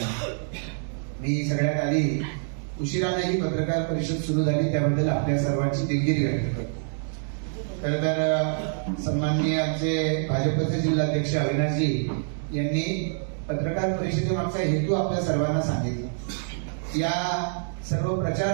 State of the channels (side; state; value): left; silent; digital silence